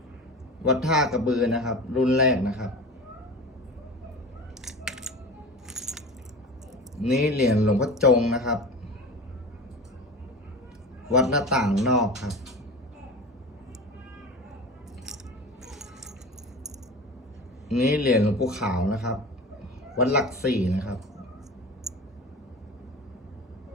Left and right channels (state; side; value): normal; both; correlation 0.32